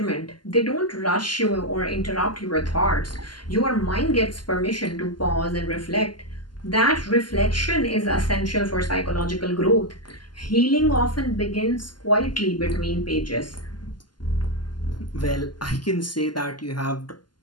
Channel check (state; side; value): late; right; 0.71 ms